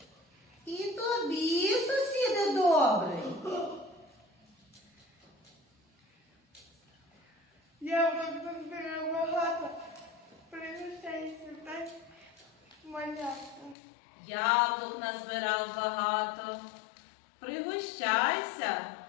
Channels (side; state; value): right; drops out; at 13.8 s